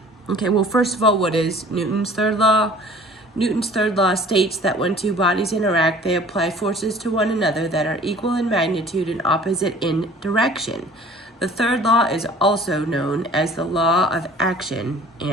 Okay, well, first of all, what is Newton's third law? Newton's third law states that when two bodies interact, they apply forces to one another that are equal in magnitude and opposite in direction. The third law is also known as the law of action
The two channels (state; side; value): normal; both; correlation 0.49